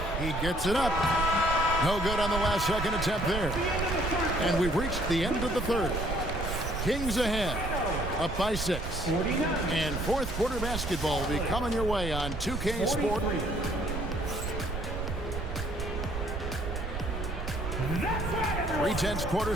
He gets it up. No good on the last second attempt there. And we've reached the end of the 3rd. Kings ahead, up by 6. And 4th quarter basketball will be coming your way on 2K Sport. 3/10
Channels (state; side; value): noise; right; rumble, 4 dB below the sound